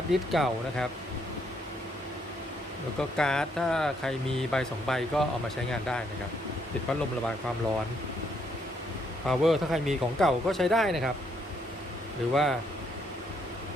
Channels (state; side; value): normal; both; correlation 0.72